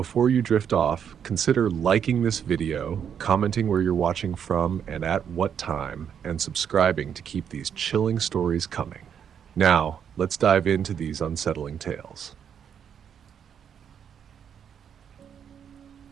you drift off, consider liking this video, commenting where you're watching from and at what time, and subscribing to keep these chilling stories coming. Now, let's dive into these unsettling tales.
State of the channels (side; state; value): left; quieter; 8.1 dB